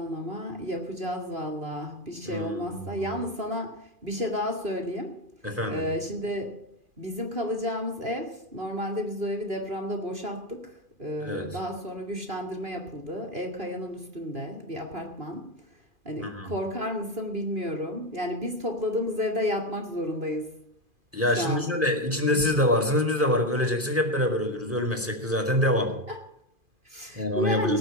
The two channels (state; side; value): late; left; 2.4 ms